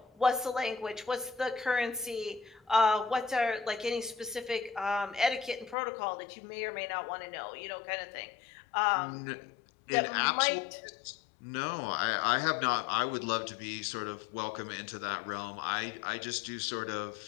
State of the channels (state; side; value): drops out; right; at 5.8 s